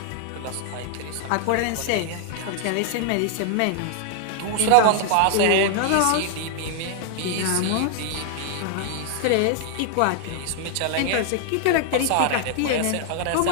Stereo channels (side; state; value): both; different; correlation 0.00